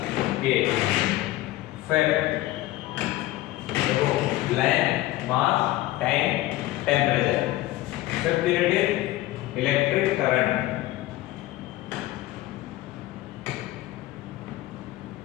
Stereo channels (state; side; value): quieter; right; 16.8 dB